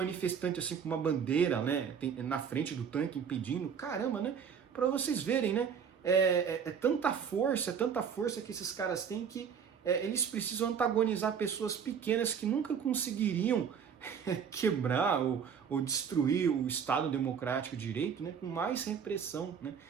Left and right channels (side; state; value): left; quieter; 7.2 dB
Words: assim com uma bandeira, né, na frente do tanque impedindo. Caramba, né? Para vocês verem, né? É tanta força que esses caras têm que eles precisam antagonizar pessoas pequenas que nunca conseguiriam quebrar ou destruir o Estado democrático de direito, né, com mais repressão, né?